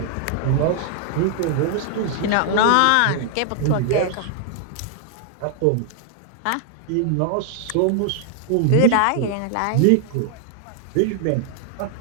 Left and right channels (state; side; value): different; both; correlation 0.00